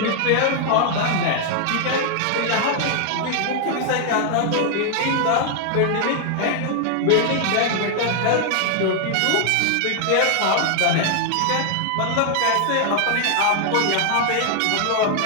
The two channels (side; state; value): both; different; correlation 0.00